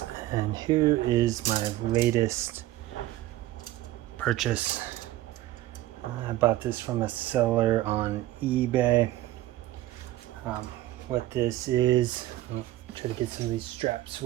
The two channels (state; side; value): quieter; left; 15.6 dB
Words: and here is my latest purchase. I bought this from a seller on eBay. What this is, I'll try to get some of these straps